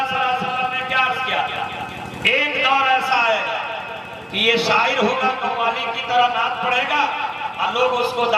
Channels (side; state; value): both; identical; correlation 1.00